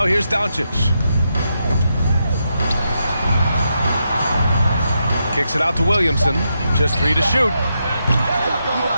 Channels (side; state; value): both; inverted; correlation -0.83